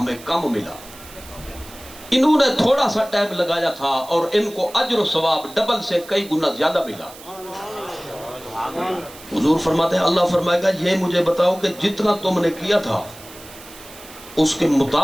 کم ملا، انہوں نے تھوڑا سا ٹائم لگایا تھا اور ان کو اجر و ثواب ڈبل سے کئی گنا زیادہ ملا۔ حضور فرماتے ہیں اللہ فرمائے گا یہ مجھے بتاؤ کہ جتنا تم نے کیا تھا اس کے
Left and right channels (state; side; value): noise; right; hiss, 18 dB below the sound